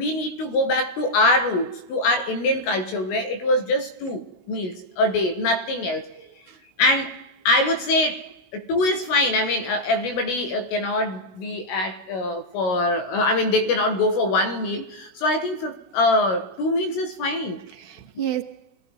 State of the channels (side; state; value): right; late; 16 ms